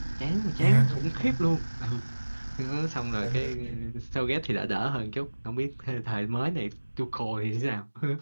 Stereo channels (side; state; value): both; inverted; correlation -1.00